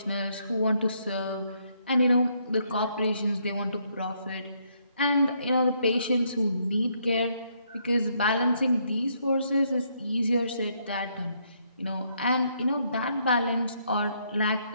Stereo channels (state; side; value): inverted; both; correlation -0.73